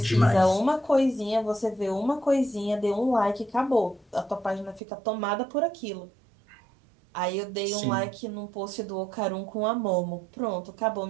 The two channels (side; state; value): left; drops out; at 4.8 s